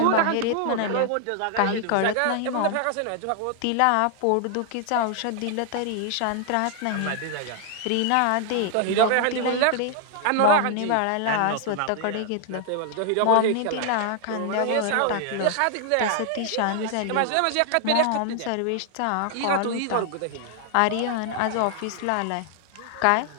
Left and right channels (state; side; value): different; both; correlation 0.00